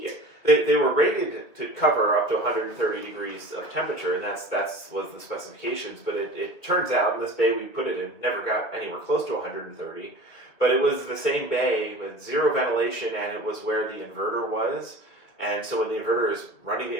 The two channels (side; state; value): right; late; 2.5 ms